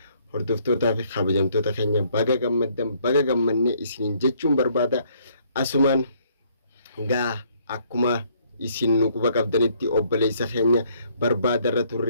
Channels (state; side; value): inverted; both; correlation -0.65